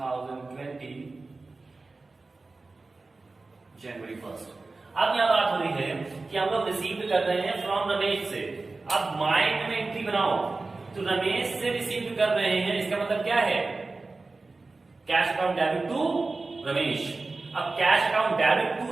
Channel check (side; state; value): left; quieter; 3.6 dB